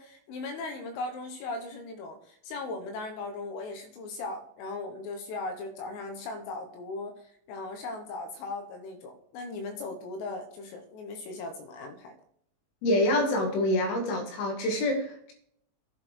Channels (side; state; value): right; late; 19 ms